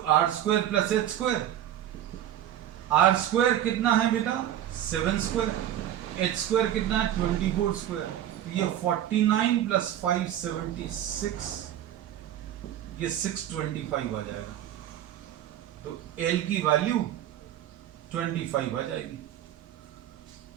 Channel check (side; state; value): left; quieter; 11.3 dB